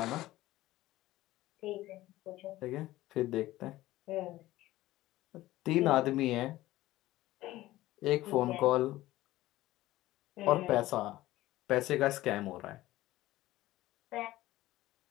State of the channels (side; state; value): right; quieter; 16.5 dB